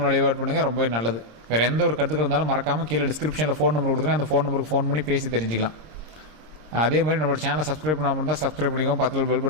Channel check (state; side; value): late; left; 26 ms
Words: வழிபாடு பண்ணுங்கள், ரொம்பவே நல்லது. வேறு எந்த ஒரு கருத்துக்கள் இருந்தாலும் மறக்காமல் கீழே டிஸ்கிரிப்ஷனில் ஃபோன் நம்பர் கொடுத்துருங்க, அந்த ஃபோன் நம்பருக்கு ஃபோன் பண்ணி பேசி தெரிஞ்சுக்கலாம். அதே மாதிரி நம்மளோட சேனலை சப்ஸ்கிரைப் பண்ணாமல் இருந்தால் சப்ஸ்கிரைப் பண்ணிக்கோங்க, பக்கத்தில் பெல்